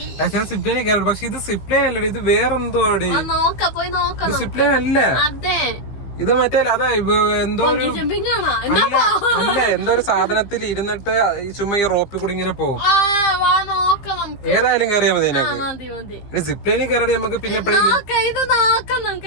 ഞാൻ സിപ്പ് ലൈനിൽ കയറി, പക്ഷെ ഇത് സിപ്പ് ലൈൻ അല്ലേ, ഇത് വേറെന്തോ. ഇത് സിപ്പ് ലൈൻ അല്ല, ഇത് മറ്റേ അതാ എന്തോ ഒരു അല്ല എന്തോ ഒരു സാധനത്തിൽ ഇരുന്നിട്ട് ചുമ്മാ ഈ റോപ്പിൽ കൂടി ഇങ്ങനെ പോകും. ഏതായാലും കയറിയാൽ മതി. സിപ്പ് ലൈനിൽ കയറി നമുക്ക് പിന്നെ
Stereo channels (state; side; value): late; right; 15 ms